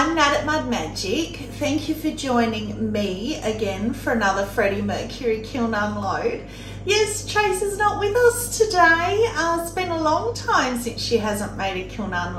Nat at Mud Magic. Thank you for joining me again for another Freddie Mercury kiln unload. Yes, Tracy's not with us today. It's been a long time since she hasn't made a kiln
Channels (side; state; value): both; identical; correlation 1.00